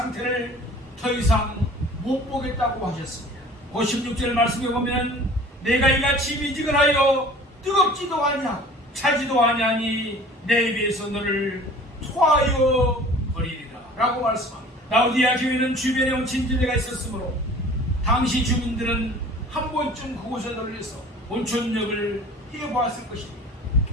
더 이상 못 보겠다고 하셨습니다. 56절 말씀에 보면 내가 이같이 미지근하여 뜨겁지도 아니하고 차지도 아니하니 내 입에서 너를 토하여 버리리라 라고 말씀합니다. 라오디아 교회는 주변에 온천지대가 있었으므로 당시 주민들은 한 번쯤 그곳에 들려서 온천욕을 해보았을 것입니다.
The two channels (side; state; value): both; normal; correlation 0.46